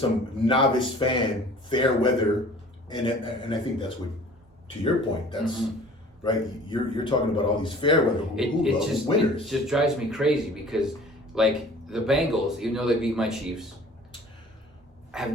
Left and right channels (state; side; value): normal; both; correlation 0.48